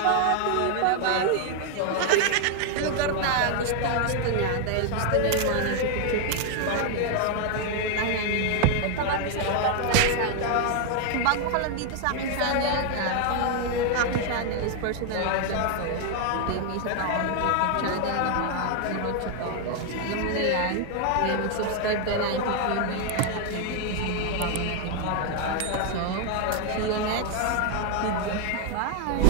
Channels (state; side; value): different; both; correlation 0.00